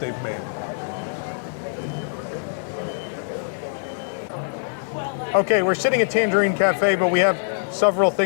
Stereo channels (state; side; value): silent; right; digital silence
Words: made. Okay, we're sitting at Tangierine Cafe, but we have several